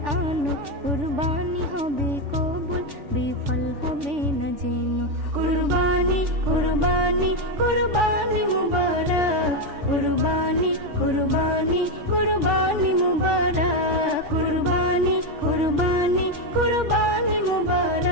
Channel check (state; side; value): late; left; 3.4 ms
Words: আনো, কুরবানি হবে কবুল, বিফল হবে না জেনো। কুরবানি কুরবানি কুরবানি মুবারক, কুরবানি কুরবানি কুরবানি মুবারক, কুরবানি কুরবানি কুরবানি